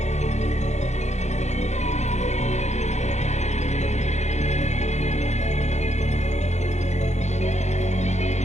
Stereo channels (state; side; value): late; right; 0.33 ms